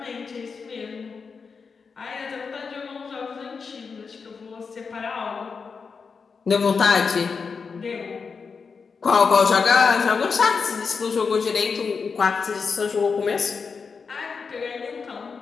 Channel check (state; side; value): quieter; right; 5.3 dB